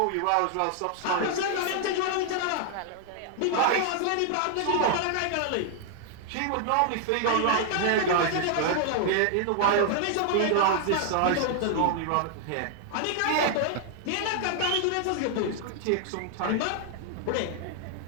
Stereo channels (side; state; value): both; different; correlation 0.00